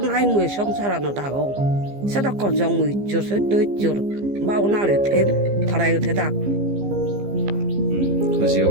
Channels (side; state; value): left; late; 15 ms